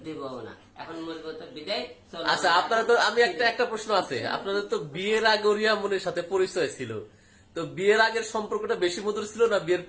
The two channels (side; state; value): both; identical; correlation 1.00